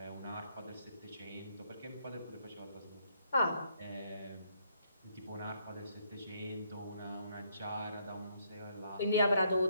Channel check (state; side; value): inverted; both; correlation -0.72